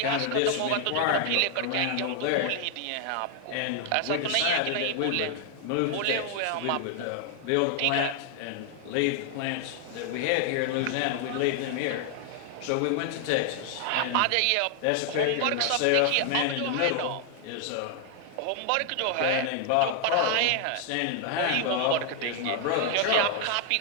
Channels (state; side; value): different; both; correlation 0.00